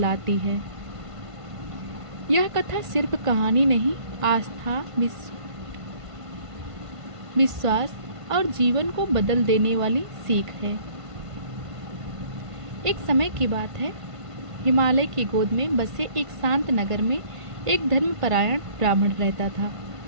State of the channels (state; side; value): late; left; 1.5 ms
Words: है। यह कथा सिर्फ कहानी नहीं, आस्था, विश्वास और जीवन को बदल देने वाली सीख है। एक समय की बात है, हिमालय की गोद में बसे एक शांत नगर में एक धर्मपरायण ब्राह्मण रहता था।